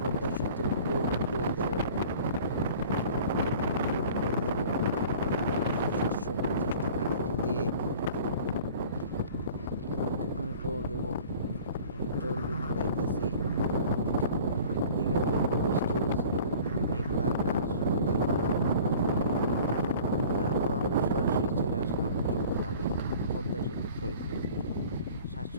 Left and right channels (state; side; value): inverted; both; correlation -0.46